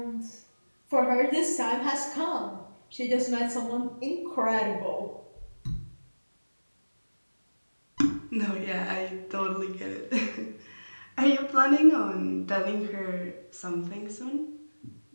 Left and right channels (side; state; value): both; inverted; correlation -1.00